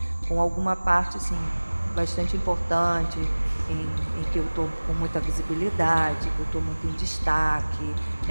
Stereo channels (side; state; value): both; inverted; correlation -1.00